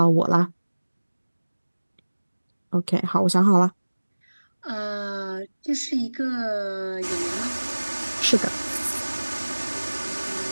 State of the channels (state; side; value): inverted; both; correlation -1.00